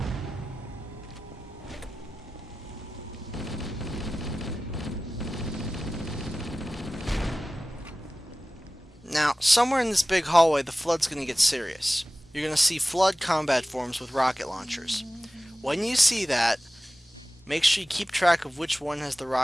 Now, somewhere in this big hallway, the flood's gonna get serious. You're gonna see flood combat forms with rocket launchers. When you see that, make sure you keep track of which one has the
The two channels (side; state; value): both; normal; correlation 0.96